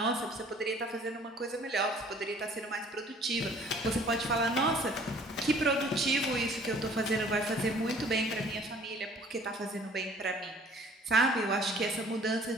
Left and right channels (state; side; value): normal; both; correlation 0.54